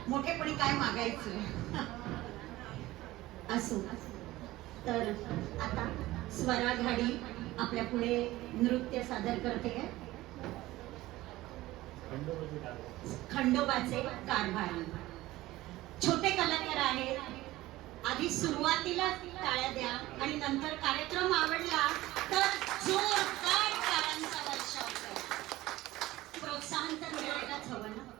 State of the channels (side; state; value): left; quieter; 17.4 dB